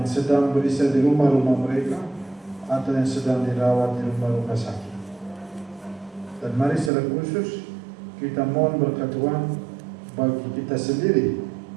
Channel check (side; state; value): left; drops out; at 6.9 s